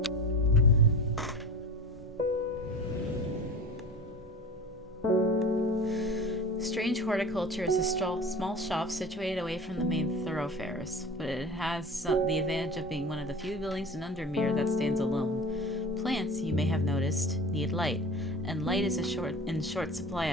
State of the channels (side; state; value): both; normal; correlation 0.35